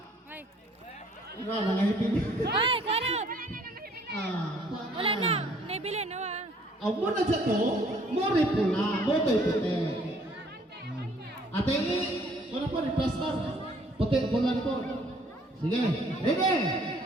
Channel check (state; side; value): normal; both; correlation 0.60